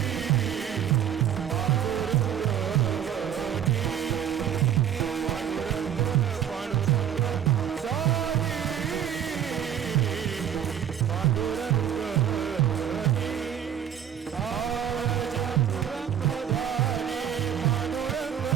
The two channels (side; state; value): left; quieter; 9.4 dB